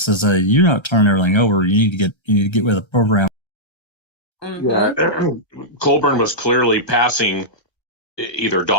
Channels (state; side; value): late; right; 1.3 ms